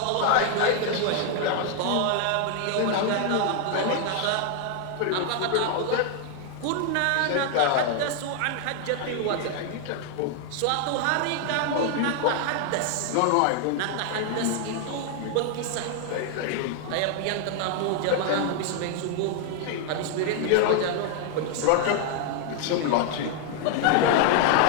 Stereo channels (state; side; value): different; both; correlation 0.00